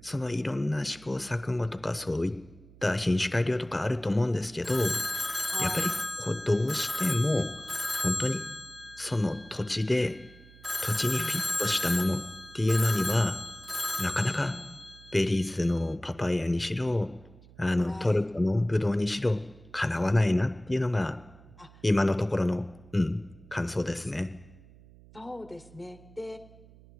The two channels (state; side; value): noise; right; hum, 23 dB below the sound